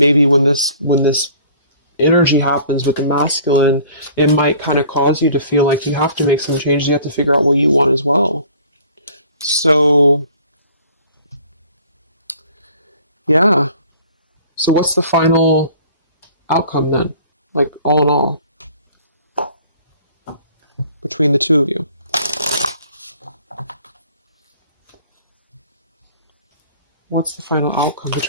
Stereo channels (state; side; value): inverted; both; correlation -0.51